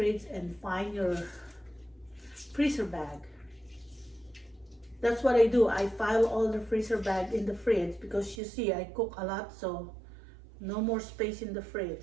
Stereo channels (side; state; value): left; drops out; at 8.4 s